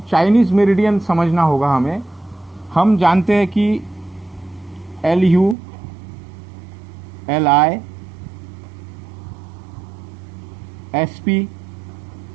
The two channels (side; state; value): left; drops out; at 5.6 s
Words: चाइनीज मेरिडियन समझना होगा हमें। हम जानते हैं कि LU, LI, SP,